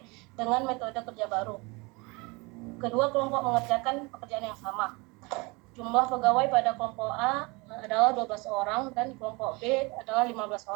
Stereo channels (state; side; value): quieter; left; 26.7 dB